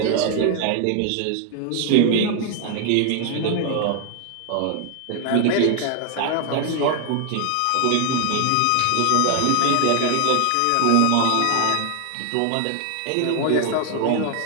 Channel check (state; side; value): different; both; correlation 0.00